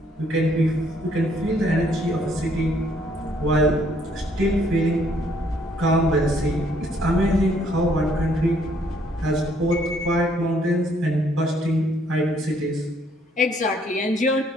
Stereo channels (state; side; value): normal; both; correlation 0.66